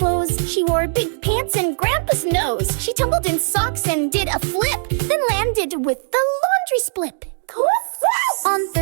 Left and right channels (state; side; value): silent; left; digital silence